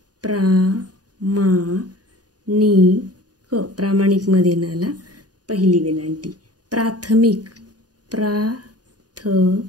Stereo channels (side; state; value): left; late; 0.68 ms